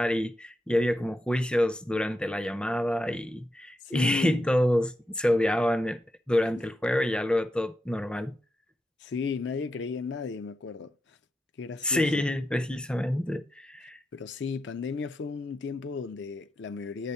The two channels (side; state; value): both; normal; correlation 0.86